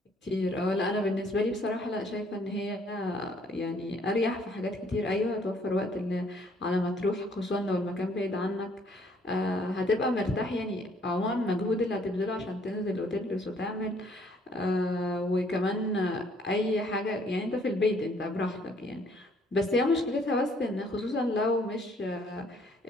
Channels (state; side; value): normal; both; correlation 0.64